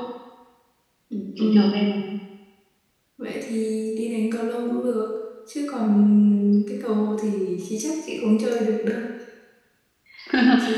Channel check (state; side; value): identical; both; correlation 1.00